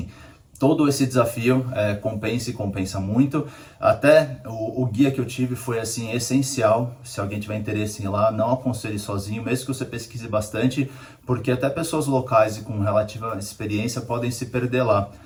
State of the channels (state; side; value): identical; both; correlation 1.00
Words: todo esse desafio compensa e compensa muito. Até o guia que eu tive foi assim essencial. Se alguém tiver interesse em ir lá, não aconselhe sozinho, mesmo que você pesquise bastante, porque até pessoas locais e com relativa experiência podem se perder lá.